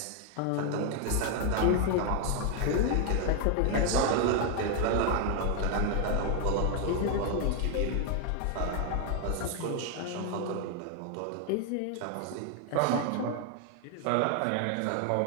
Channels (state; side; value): different; both; correlation 0.00